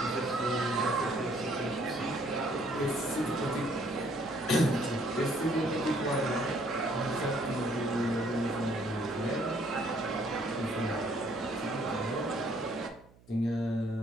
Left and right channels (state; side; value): noise; right; hum, 27 dB below the sound